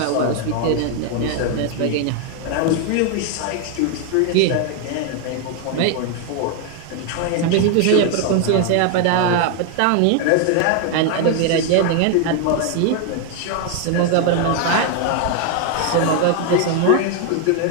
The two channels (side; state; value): both; different; correlation 0.01